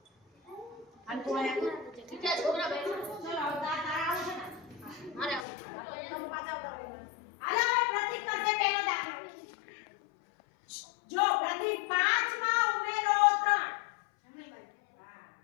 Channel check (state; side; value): drops out; right; at 5.5 s